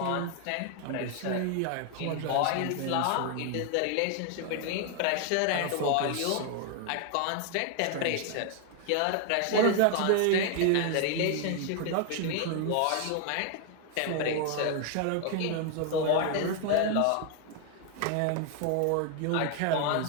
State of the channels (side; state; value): both; different; correlation 0.00